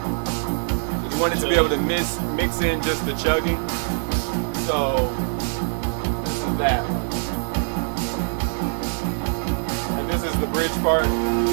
to be able to mix in just the chugging. So this is that one. And this is the bridge part.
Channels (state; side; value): silent; left; digital silence